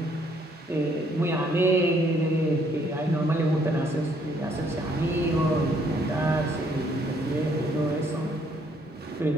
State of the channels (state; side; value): normal; both; correlation 0.67